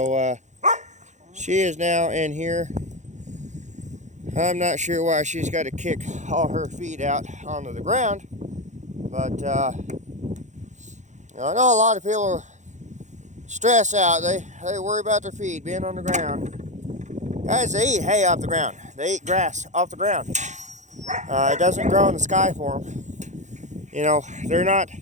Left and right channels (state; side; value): late; left; 0.35 ms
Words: she is now in here. I'm not sure why she's got to kick all her feet out onto the ground, but you know, I know a lot of people stress out. They worry about their feet being on the ground. Guys, they eat hay off the ground. They eat grass off the ground. It doesn't grow in the sky for them. You know, they're not